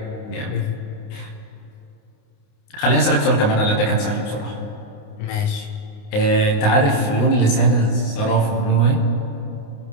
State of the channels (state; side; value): late; right; 29 ms